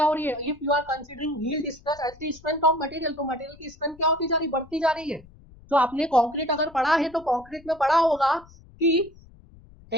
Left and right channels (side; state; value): left; noise; rumble, 24 dB below the sound